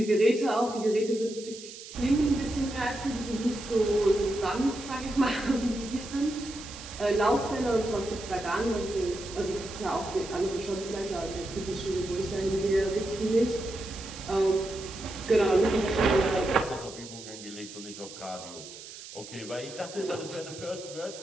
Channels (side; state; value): right; noise; hiss, 14 dB below the sound